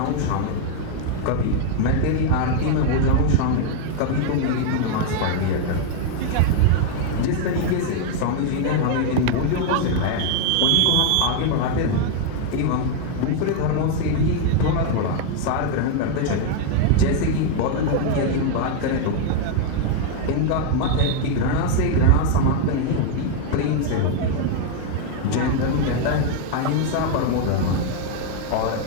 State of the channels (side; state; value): both; different; correlation 0.00